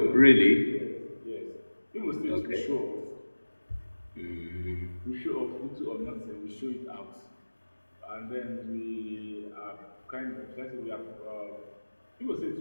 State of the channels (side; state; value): both; inverted; correlation -1.00